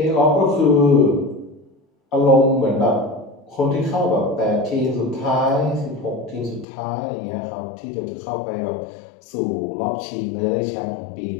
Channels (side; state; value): right; drops out; at 6.7 s